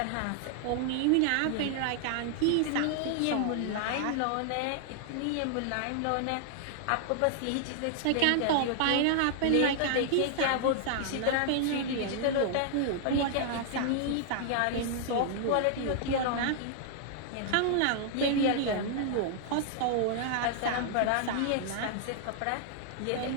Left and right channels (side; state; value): both; different; correlation -0.01